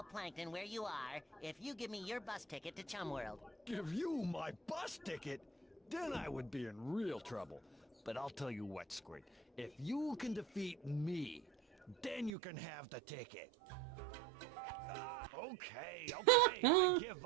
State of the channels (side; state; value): left; drops out; at 12.3 s